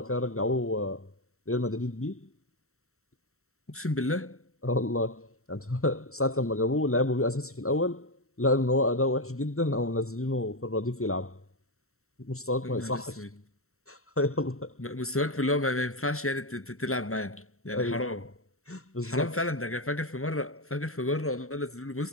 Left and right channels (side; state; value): right; late; 0.63 ms